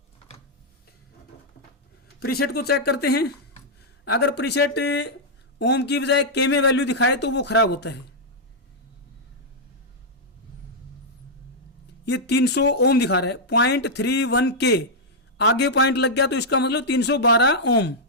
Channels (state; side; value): normal; both; correlation -0.06